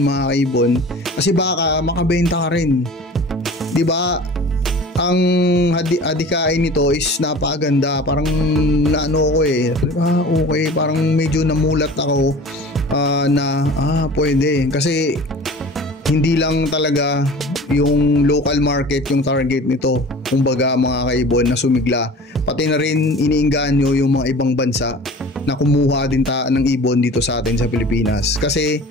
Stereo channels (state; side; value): normal; both; correlation 0.41